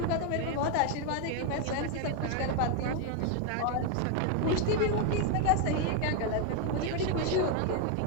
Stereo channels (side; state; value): both; different; correlation 0.01